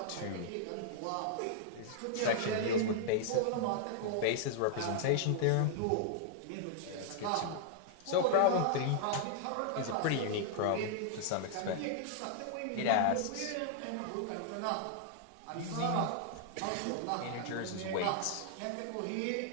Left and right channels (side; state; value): both; different; correlation -0.01